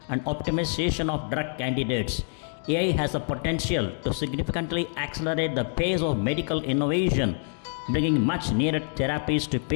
and optimization of drug candidates, AI has the potential to significantly accelerate the pace of medical innovation, bringing much needed therapies to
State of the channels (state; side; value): silent; right; 57 dB below the other